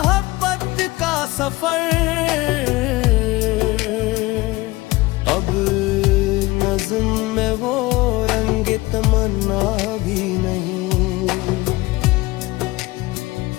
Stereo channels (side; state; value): right; quieter; 20.6 dB